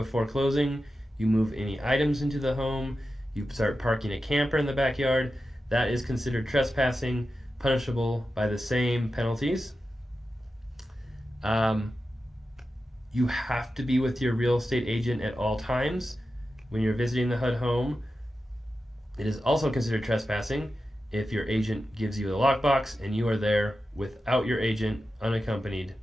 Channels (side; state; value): both; normal; correlation 0.91